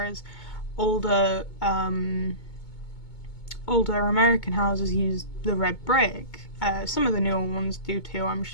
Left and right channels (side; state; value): right; late; 2.2 ms